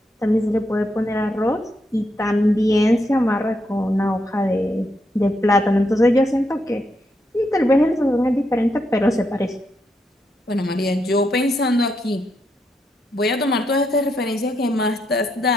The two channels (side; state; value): both; normal; correlation 0.80